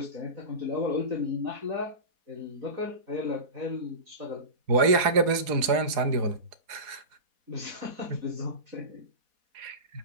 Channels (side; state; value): left; late; 4.1 ms